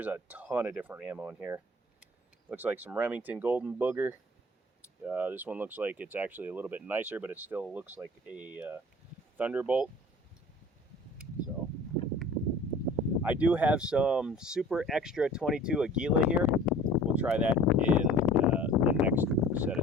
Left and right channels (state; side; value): normal; both; correlation 0.46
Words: a ton of different ammo in here. Looks like some Remington Golden Booger. This one looks like it's actually a little bit nicer, but it still looks like a Thunderbolt. So I do have some super extra 22 Aguila here. We'll try that in the next set